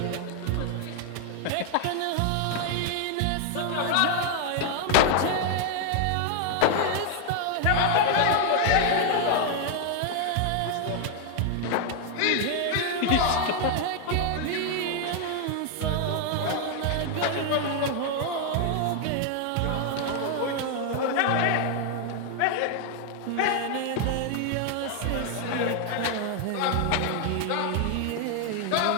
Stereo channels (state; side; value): different; both; correlation 0.00